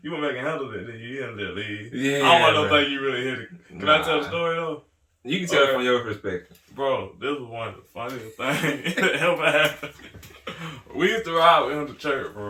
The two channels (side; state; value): both; identical; correlation 1.00